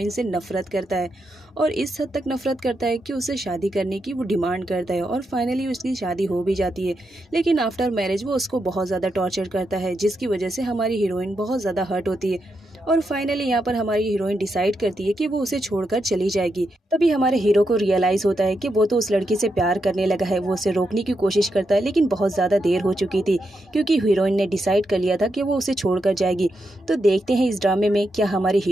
से नफरत करता है और इस हद तक नफरत करता है कि उसे शादी करने की वो डिमांड करता है और फाइनली उसकी शादी हो भी जाती है। लेकिन आफ्टर मैरिज वो उसको बहुत ज़्यादा टॉर्चर करता है, जिसकी वजह से हमारी हीरोइन बहुत ज़्यादा हर्ट होती है और फाइनली यहाँ पर हमारी हीरोइन डिसाइड करती है कि वो उसे छोड़कर चली जाएगी। तभी हमारे हीरो को रियलाइज होता है कि वो तो उस लड़की से प्यार करने लगा है। वो उसे रोकने की कोशिश करता है, लेकिन बहुत ज्यादा देर हो चुकी थी, क्योंकि हीरोइन ने डिसाइड कर लिया था कि वो उसे छोड़कर जाएगी। तो देखते हैं इस ड्रामे में क्या हमारे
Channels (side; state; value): both; normal; correlation 0.84